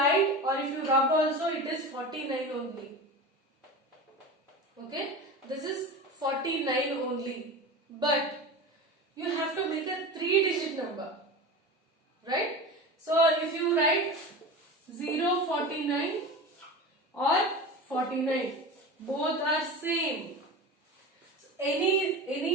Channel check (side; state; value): both; normal; correlation 0.30